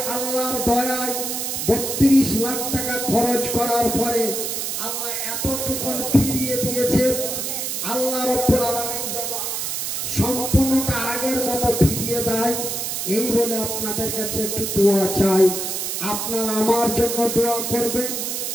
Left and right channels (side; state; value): right; noise; hiss, 2 dB below the sound